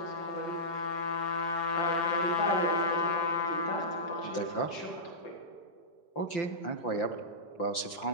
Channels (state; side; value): late; right; 5.8 ms